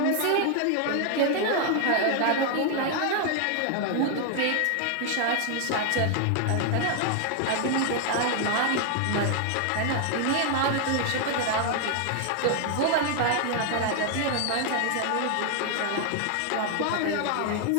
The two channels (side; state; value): both; different; correlation 0.00